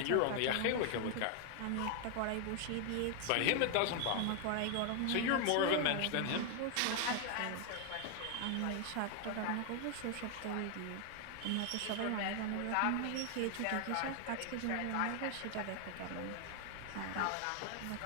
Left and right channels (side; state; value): both; different; correlation 0.00